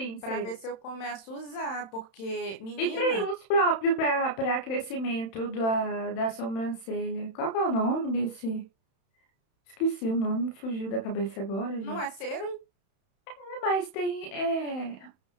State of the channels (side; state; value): right; late; 31 ms